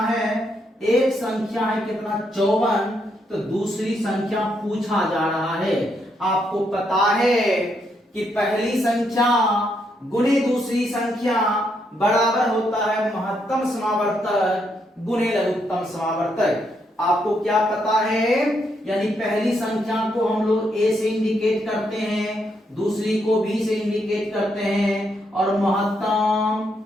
है, एक संख्या है कितना 54, तो दूसरी संख्या पूछा जा रहा है। आपको पता है कि पहली संख्या गुणे दूसरी संख्या बराबर होता है महत्तम समावर्तक गुणे लघुत्तम समावर्तक। आपको क्या पता है, यानी पहली संख्या को हम लोग ए से इंडिकेट करते हैं, दूसरी को बी से इंडिकेट करते हैं, और महत्तम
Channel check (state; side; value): normal; both; correlation 0.77